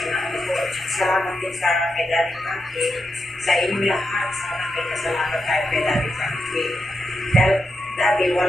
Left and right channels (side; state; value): both; normal; correlation 0.85